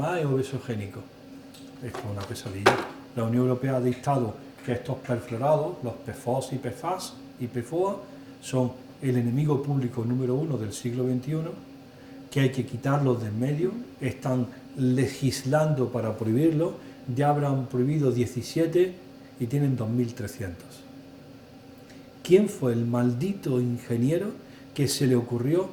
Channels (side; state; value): both; identical; correlation 1.00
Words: es obesogénico. Esto es una pesadilla. La Unión Europea ha dictado que estos perfluorados, los PFOS y PFAS y PFOA, son el enemigo público número 1 del siglo XXI, que hay que quitarlos de en medio. Están legislando para prohibirlo. Ya habrán prohibido 17 y tienen 2.300. ¿Quién fue el maldito ingeniero que se le ocurrió